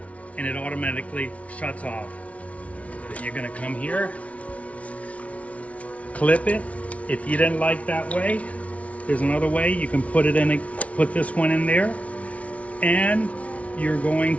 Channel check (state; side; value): late; right; 0.065 ms